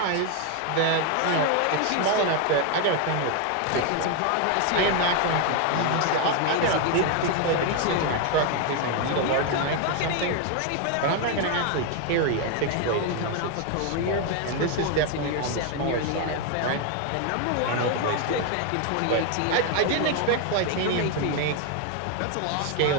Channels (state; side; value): different; both; correlation 0.01